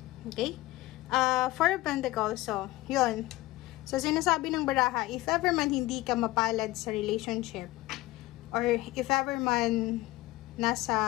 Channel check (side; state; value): right; quieter; 18.5 dB